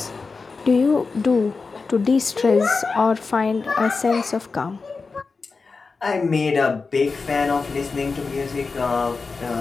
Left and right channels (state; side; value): quieter; right; 4.4 dB